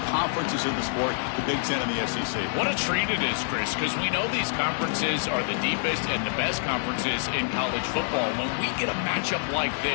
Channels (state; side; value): silent; right; digital silence